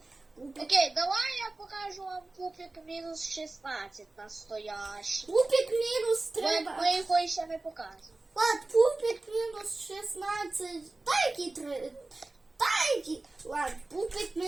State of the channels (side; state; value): left; quieter; 3.1 dB